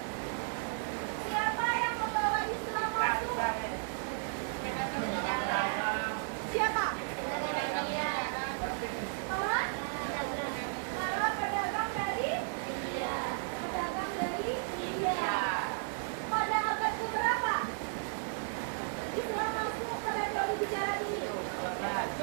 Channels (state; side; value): silent; left; 55 dB below the other